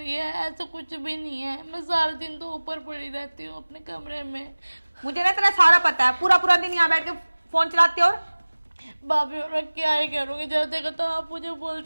है, ऐसा कुछ भी नहीं है। मैं सारा दिन तो ऊपर पड़ी रहती हूँ अपने कमरे में। मुझे ना तेरा सारा पता है, पूरा पूरा दिन यहाँ बैठ के फोन चलाते। और भाभी और मैं क्या ही करूँगी, जब देखो तो आप मुझे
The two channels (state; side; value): inverted; both; correlation -1.00